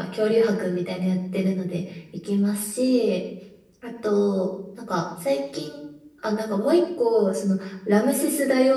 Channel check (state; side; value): identical; both; correlation 1.00